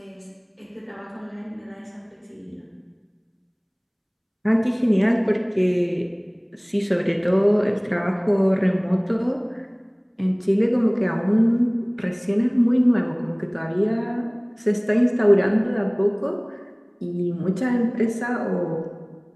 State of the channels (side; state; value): both; identical; correlation 1.00